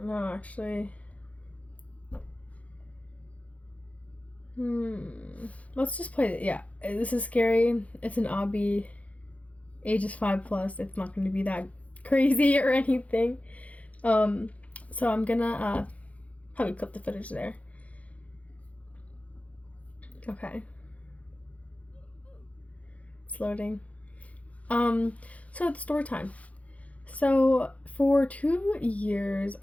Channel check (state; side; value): late; right; 0.067 ms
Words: know, actually. Let's just play it. Yeah, this is scary. It's an obby. Age is 5+. It's not going to be that crazy or anything. So I'm gonna probably clip the footage there. Okay. It's loading. So it's story time. So for 2 years,